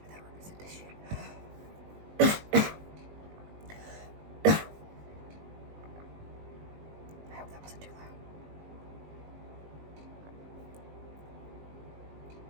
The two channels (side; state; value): left; late; 19 ms